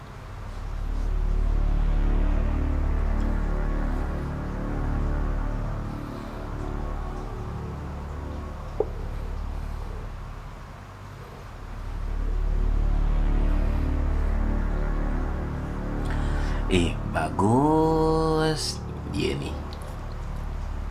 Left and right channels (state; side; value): identical; both; correlation 1.00